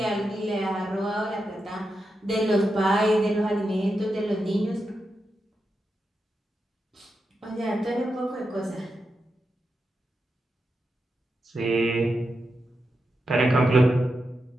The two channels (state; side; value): normal; both; correlation 0.87